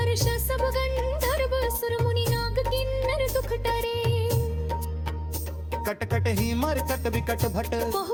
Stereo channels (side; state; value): both; identical; correlation 1.00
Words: सब गंधर्व सुर मुनि नाग किन्नर दुख टरे कटकट ही मरकट विकट भट